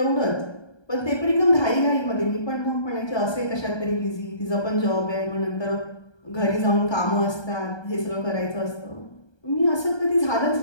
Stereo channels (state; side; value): late; right; 1.3 ms